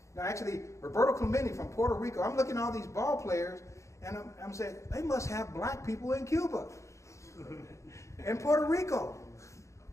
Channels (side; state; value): right; late; 0.15 ms